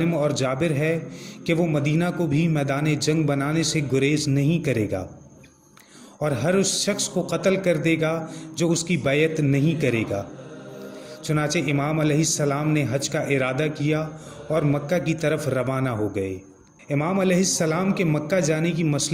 اور جابر ہے کہ وہ مدینہ کو بھی میدان جنگ بنانے سے گریز نہیں کرے گا، اور ہر اس شخص کو قتل کر دے گا جو اس کی بیعت نہیں کرے گا۔ چنانچہ امام علیہ السلام نے حج کا ارادہ کیا اور مکہ کی طرف روانہ ہو گئے۔ امام علیہ السلام کے مکہ جانے کی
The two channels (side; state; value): both; identical; correlation 1.00